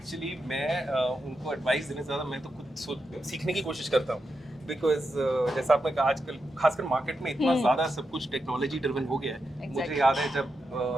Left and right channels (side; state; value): both; normal; correlation 0.86